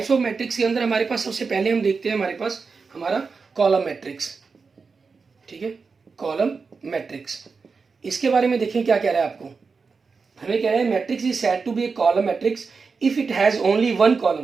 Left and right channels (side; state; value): left; quieter; 4.8 dB